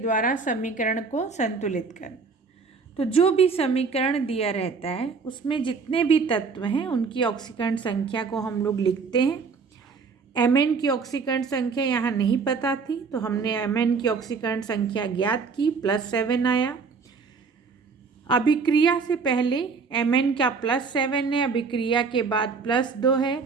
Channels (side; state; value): left; quieter; 5.0 dB